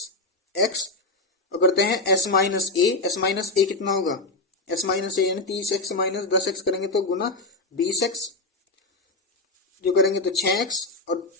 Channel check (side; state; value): right; quieter; 3.2 dB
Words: और करते हैं s माइनस ए कितना होगा s माइनस ए, यानी 30x माइनस 10x करेंगे तो गुना 20x, जो करेंगे तो 6x और